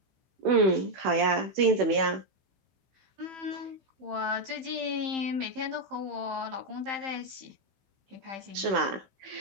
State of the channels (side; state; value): left; late; 16 ms